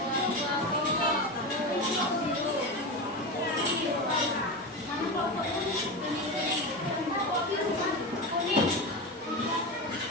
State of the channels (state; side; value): normal; both; correlation 0.21